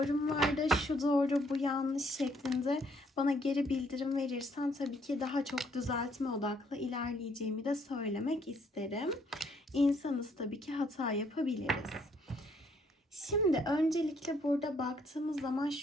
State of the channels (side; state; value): both; normal; correlation 0.68